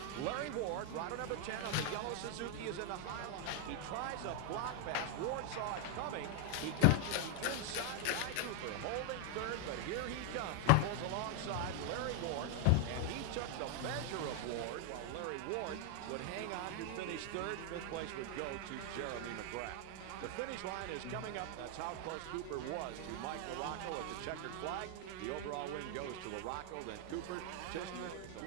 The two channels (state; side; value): different; both; correlation 0.00